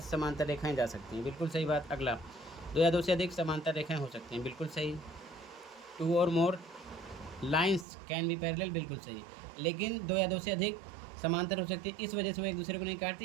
समांतर रेखाएं जा सकती हैं, बिल्कुल सही बात। अगला, दो या दो से अधिक समांतर रेखाएं हो सकती हैं, बिल्कुल सही। टू और मोर लाइंस कैन बी पैरेलल, बिल्कुल सही, लेकिन दो या दो से अधिक समांतर हो सकती है, इस वजह से वो एक दूसरे को नहीं काटती,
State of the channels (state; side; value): drops out; left; at 7.9 s